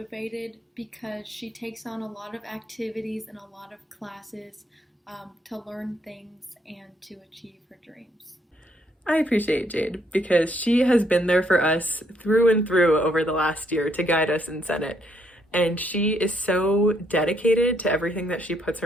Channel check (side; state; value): both; normal; correlation 0.71